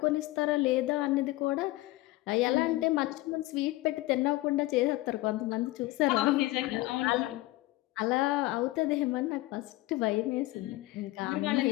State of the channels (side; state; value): right; quieter; 18.6 dB